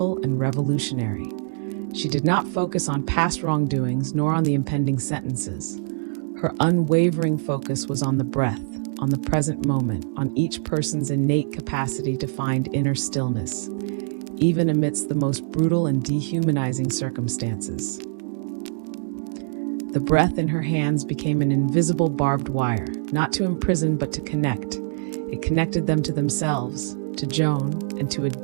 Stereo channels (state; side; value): silent; left; 60 dB below the other